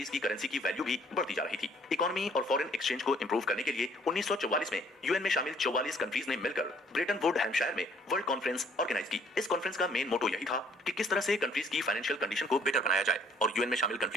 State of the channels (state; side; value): normal; both; correlation 0.61